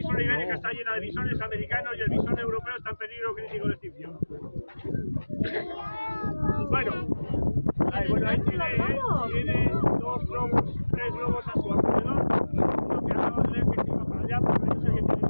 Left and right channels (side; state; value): both; inverted; correlation -1.00